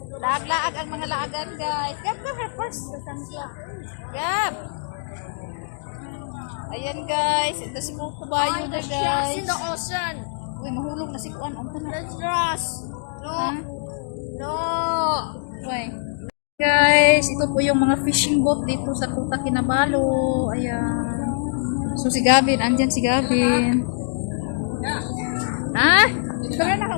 laag-laag ang mga laagan guys. Gab ka first. Gab. Ayan guys, ito si Kukubayo na guys. In the ocean. Uy, mahulog na si kuan. Ang tanan. There's trust. No. Ha? No. Uy. Guys, ito po yung mga fishing boat dito sa Kuta Kinabalu. Ayan. So si Gavin, andyan si Gavin. Ha? Tara na,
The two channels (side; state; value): right; silent; digital silence